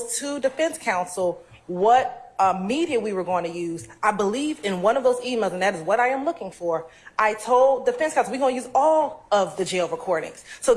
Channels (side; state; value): both; identical; correlation 1.00